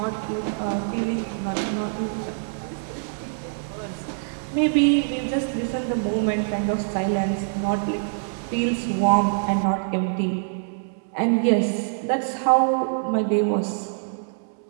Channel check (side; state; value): left; silent; digital silence